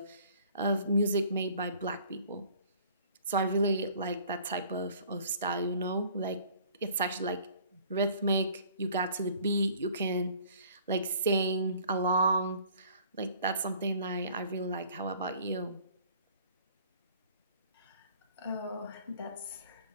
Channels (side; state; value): both; inverted; correlation -0.53